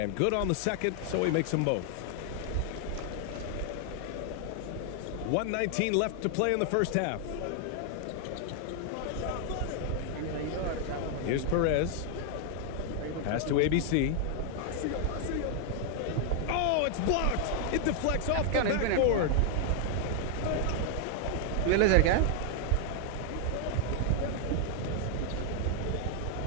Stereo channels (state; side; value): different; both; correlation 0.00